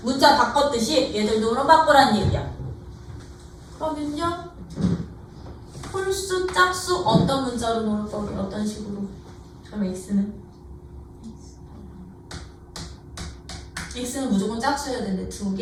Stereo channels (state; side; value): identical; both; correlation 1.00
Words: 문자 바꿨듯이 얘들도 그럼 바꾸라는 얘기야. 그러면요. 홀수, 짝수 어떤 문자로 놓을 거게? 어떤 식으로? 그럼 x는 무조건 짝수여야 되는데